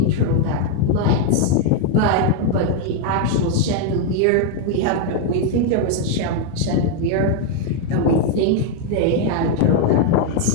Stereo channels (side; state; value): both; different; correlation 0.01